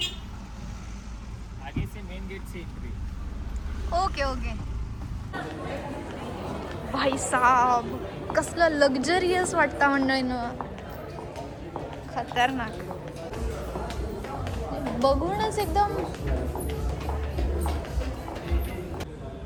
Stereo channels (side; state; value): both; identical; correlation 1.00